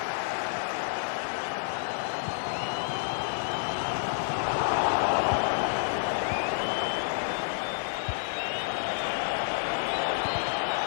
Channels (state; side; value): silent; right; 58 dB below the other